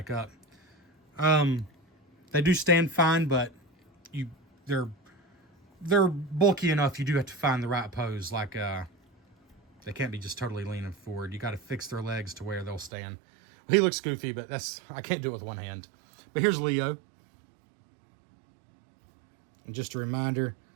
up. They do stand fine, but they're bulky enough. You do have to find the right pose. Like they can't be just totally leaning forward. You got to fix their legs to where they'll stand. He looks goofy, but I can't do it with one hand. But here's Leo. And just a reminder,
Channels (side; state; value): left; drops out; at 12.9 s